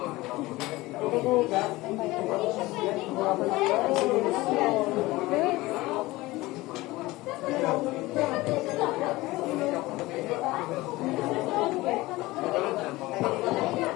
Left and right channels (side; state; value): right; quieter; 19.7 dB